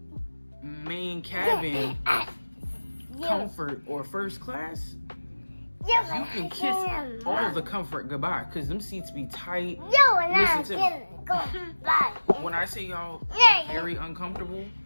main cabin, comfort, or first class, you can kiss all of the comfort goodbye, because them seats be tight. Listen to me. When I say y'all very uncomfortable,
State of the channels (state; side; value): inverted; both; correlation -1.00